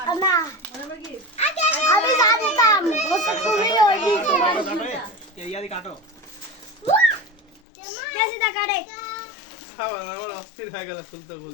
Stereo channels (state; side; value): drops out; right; at 7.6 s